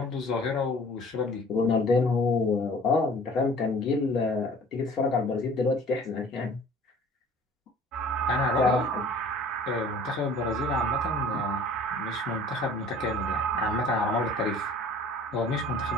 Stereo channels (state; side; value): normal; both; correlation 0.49